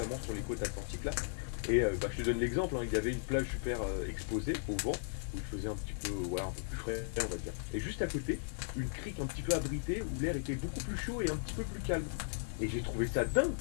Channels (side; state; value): right; silent; 53 dB below the other